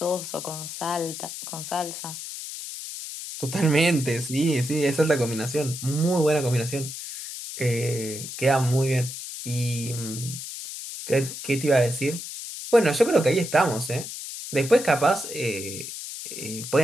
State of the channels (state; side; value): noise; left; hiss, 9 dB below the sound